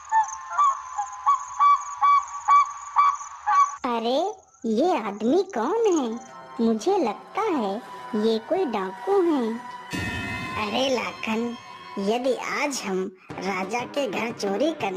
अरे ये आदमी कौन है। मुझे लगता है ये कोई डाकू हैं। अरे लाखन, यदि आज हम राजा के घर चोरी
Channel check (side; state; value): both; identical; correlation 1.00